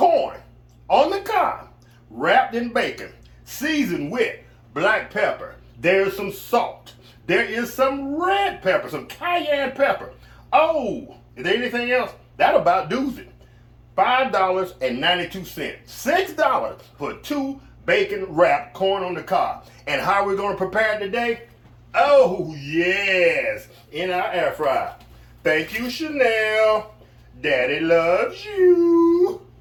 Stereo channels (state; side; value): identical; both; correlation 1.00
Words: on the cob, wrapped in bacon, seasoned with black pepper. There's some salt. There is some red pepper, some cayenne pepper. Oh, is there anything else? That about does it. $5.92. $6 for 2 bacon wrapped corn on the cob. And how are we going to prepare it today? Oh, yes, in our air fryer. Thank you, Chanel. Daddy loves you.